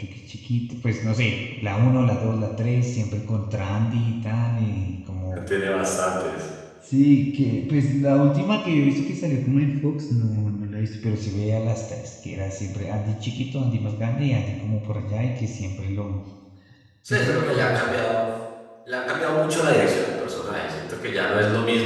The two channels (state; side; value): identical; both; correlation 1.00